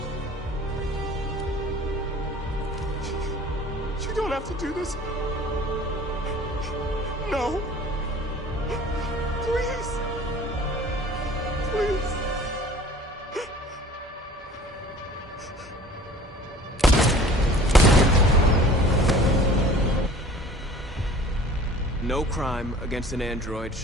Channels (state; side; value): normal; both; correlation 0.47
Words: You don't have to do this. No. Please. Please. No crime against an android